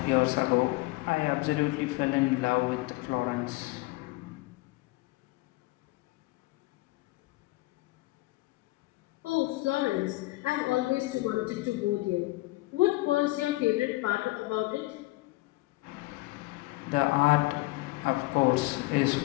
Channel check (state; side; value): quieter; right; 20.8 dB